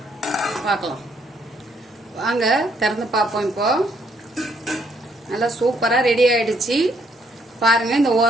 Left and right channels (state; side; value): normal; both; correlation 0.70